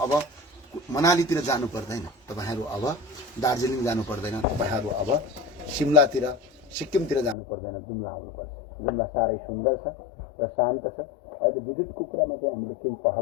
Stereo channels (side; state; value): right; drops out; at 7.4 s